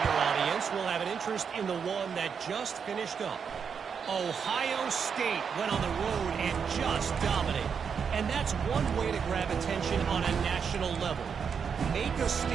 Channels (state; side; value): quieter; left; 6.6 dB